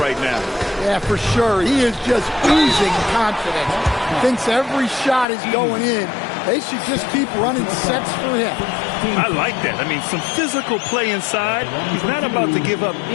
now. Yeah, for sure. He is just oozing confidence. Thinks every shot is going in. They should just keep running sets for him. I like that. I mean, some physical play inside. He's not about to give up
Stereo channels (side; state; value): right; drops out; at 5.2 s